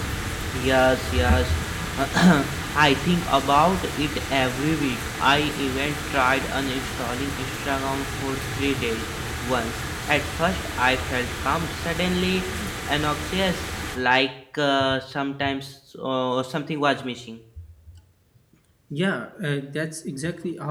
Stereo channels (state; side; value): identical; both; correlation 1.00